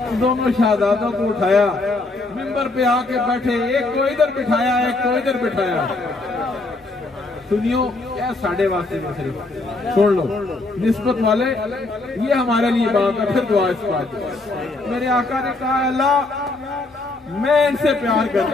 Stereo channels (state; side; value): quieter; right; 3.2 dB